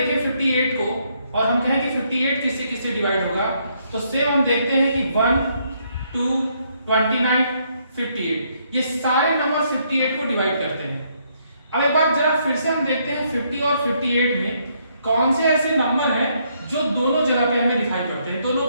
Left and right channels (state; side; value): inverted; both; correlation -0.72